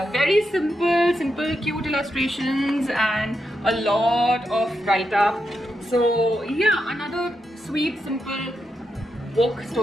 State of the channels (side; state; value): both; normal; correlation 0.85